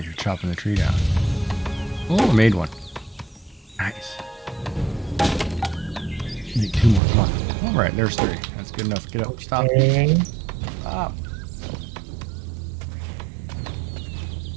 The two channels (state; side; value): drops out; left; at 7.0 s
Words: you're chopping the tree down. Oh, I made one. Nice. Need 2 more. Come on. All right, there's 3. That's good enough. Get up. Stop. Okay. Stop.